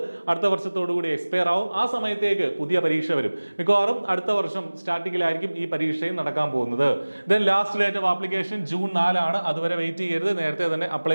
അടുത്ത വർഷത്തോടു കൂടി എക്സ്പയർ ആവും. ആ സമയത്തേക്ക് പുതിയ പരീക്ഷ വരും. മിക്കവാറും അടുത്ത വർഷം സ്റ്റാർട്ടിങ്ങിലായിരിക്കും ഈ പരീക്ഷയും നടക്കാൻ പോകുന്നത്. Then last date of application June 4 ആണ്. അതുവരെ വെയിറ്റ് ചെയ്യരുത്, നേരത്തെ തന്നെ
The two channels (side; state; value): both; inverted; correlation -1.00